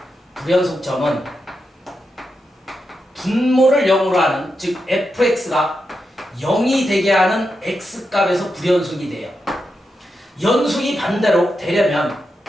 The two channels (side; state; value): both; normal; correlation 0.87